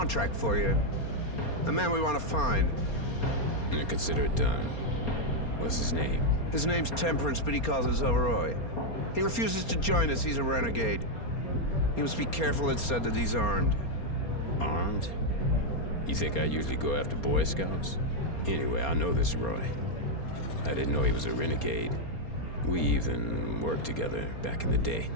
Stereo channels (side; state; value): right; late; 4.3 ms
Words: for you. A man we want to find. And consider it done. What's his name? His name's Temperance, but he calls us Overroy. He refuses to join us. He's a renegade. You must be careful, it's said that he's armed. Armed? You think I usually go after Boy Scouts? Anyway, I know this Roy. I didn't know he was a renegade. We even worked together back in the day.